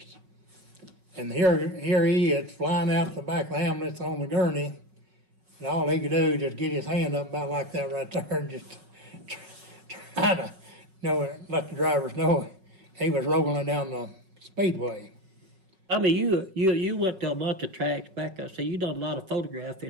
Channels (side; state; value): left; late; 5.4 ms